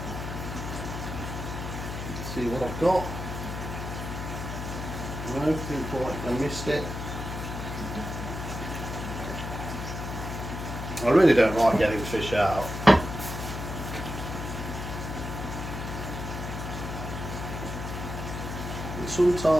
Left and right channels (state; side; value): noise; left; hum, 6 dB below the sound